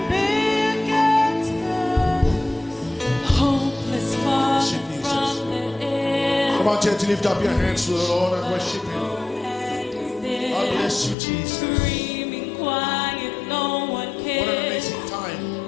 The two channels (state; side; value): drops out; right; at 11.2 s